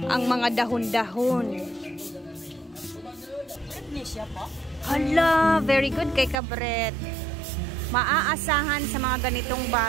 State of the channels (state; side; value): drops out; left; at 6.4 s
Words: Ang mga dahon-dahon. Hala, very good kay Kabret. Maaasahan sa mga ganitong